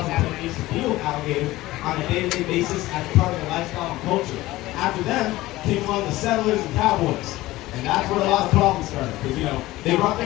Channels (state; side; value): quieter; right; 17.7 dB